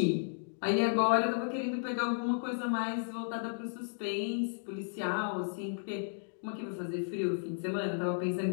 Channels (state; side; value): silent; right; digital silence